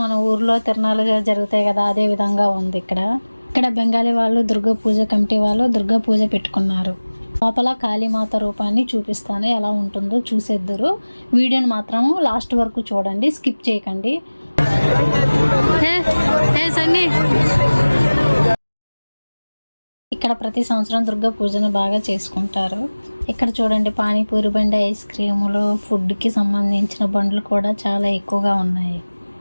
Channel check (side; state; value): both; inverted; correlation -1.00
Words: మన ఊర్లో తిరణాలు జరుగుతాయి కదా, అదే విధంగా ఉంది. ఇక్కడ బెంగాలీ వాళ్ళు దుర్గా పూజ కమిటీ వాళ్ళు దుర్గా పూజ పెట్టుకున్నారు. లోపల కాళీమాత రూపాన్ని చూపిస్తాను, ఎలా ఉంటుందో చూసేద్దరు. వీడియోని మాత్రం లాస్ట్ వరకు చూడండి, స్కిప్ చేయకండి. ఇక్కడ ప్రతి సంవత్సరం దుర్గా పూజను బాగా చేసుకుంటారు. ఇక్కడ చూడండి, పానీపూరి బండి, ఐస్ క్రీములు, ఫుడ్కి సంబంధించిన బండ్లు కూడా చాలా ఎక్కువగా ఉన్నాయి.